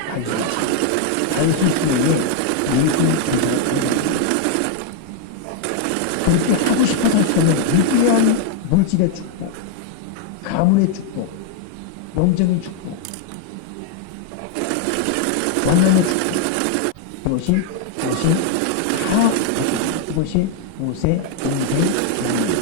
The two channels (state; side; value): different; both; correlation 0.00